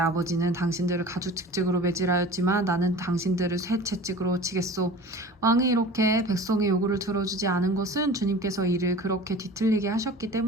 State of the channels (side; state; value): both; normal; correlation 0.39